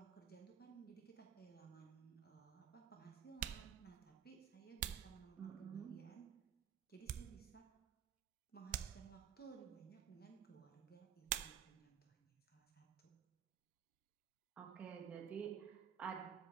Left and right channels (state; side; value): quieter; left; 9.2 dB